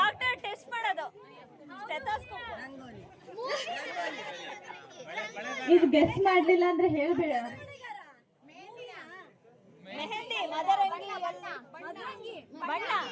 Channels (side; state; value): both; identical; correlation 1.00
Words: ಟೆಸ್ಟ್ ಮಾಡೋದು. ಇದು ಗೆಸ್ ಮಾಡ್ಲಿಲ್ಲ ಅಂದ್ರೆ ಹೇಳ್ಬೇಡ. ಮೆಹಂದಿ, ಮದರಂಗಿ, ಬಣ್ಣ